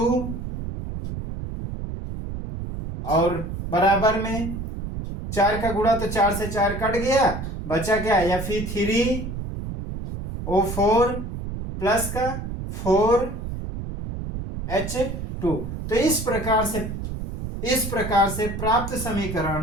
और बराबर में 4 का गुणा, तो 4 से 4 कट गया, बचा क्या? Fe3O4 प्लस का 4H2। तो इस प्रकार से प्राप्त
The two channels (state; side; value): noise; right; rumble, 6 dB below the sound